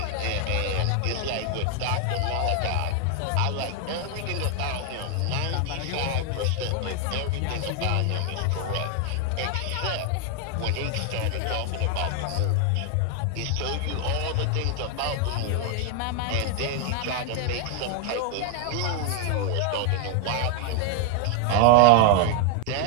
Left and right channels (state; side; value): different; both; correlation 0.00